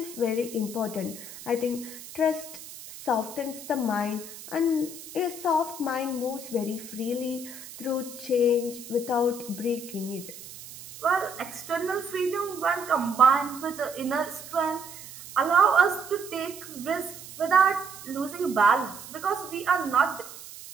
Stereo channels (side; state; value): right; noise; hiss, 15 dB below the sound